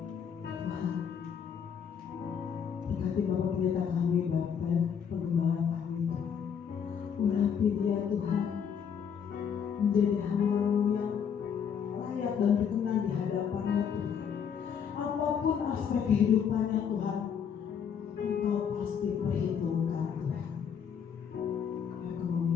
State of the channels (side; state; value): right; quieter; 7.5 dB